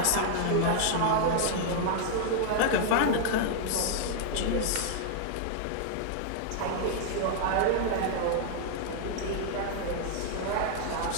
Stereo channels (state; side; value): different; both; correlation -0.01